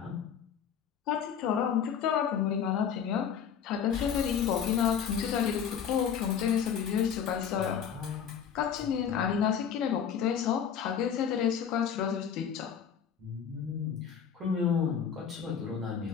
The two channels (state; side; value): quieter; right; 7.9 dB